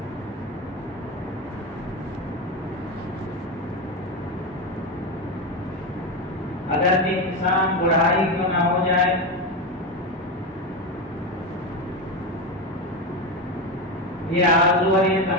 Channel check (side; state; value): both; normal; correlation 0.15